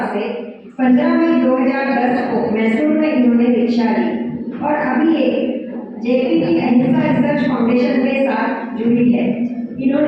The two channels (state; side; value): identical; both; correlation 1.00